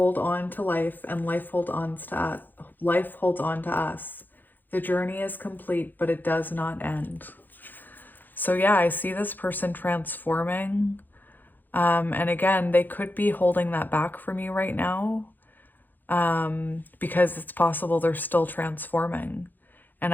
on to life, and life holds on to us. The journey is complete, but it does not end. So yeah, I see this person transforming. And again, they could be holding that back from you right now. because it's possible they're still transforming.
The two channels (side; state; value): right; late; 0.088 ms